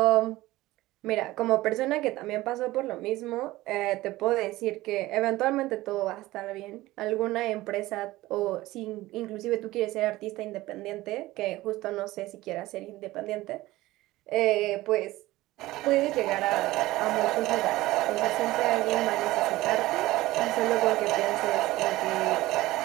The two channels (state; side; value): quieter; left; 17.8 dB